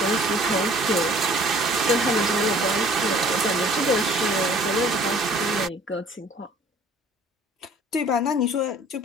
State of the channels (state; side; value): normal; both; correlation 0.53